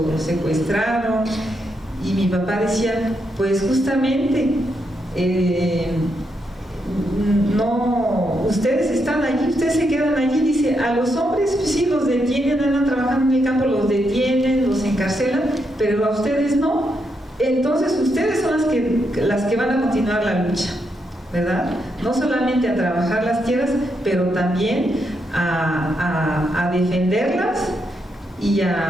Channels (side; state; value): both; normal; correlation 0.81